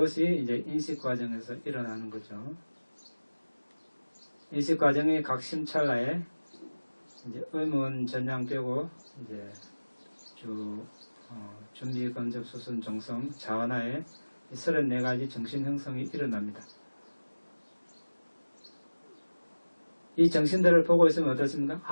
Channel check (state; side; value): inverted; both; correlation -1.00